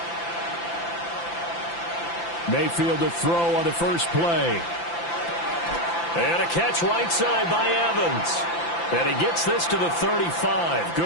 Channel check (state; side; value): late; right; 5.9 ms